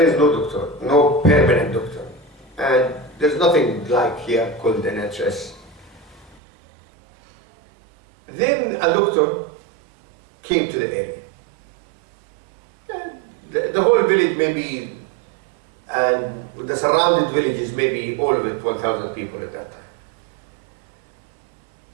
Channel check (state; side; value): drops out; left; at 6.4 s